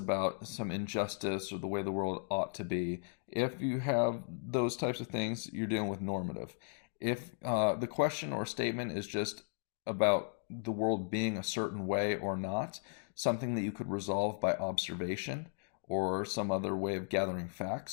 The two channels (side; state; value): right; silent; 54 dB below the other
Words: some injustice or the way the world ought to be. If you have those types of things, you're dealing with normative. If the question or statement is just about the world being a certain way or not, something that you could resolve by observation or some other way of gathering